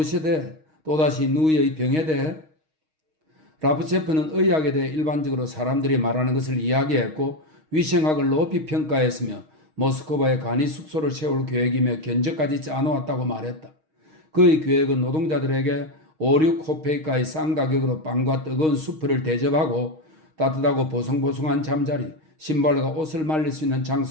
대해 또다시 누이의 병에 대해 라프체프는 의학에 대해 일반적으로 사람들이 말하는 것을 이야기했고 위생학을 높이 평가했으며 모스크바에 간이 숙소를 세울 계획이며 견적까지 짜놓았다고 말했다. 그의 계획은 노동자들에게 5-6코페이카의 싼 가격으로 빵과 뜨거운 수프를 대접하고 따뜻하고 보송보송한 잠자리, 신발과 옷을 말릴 수 있는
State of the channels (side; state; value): left; late; 6.4 ms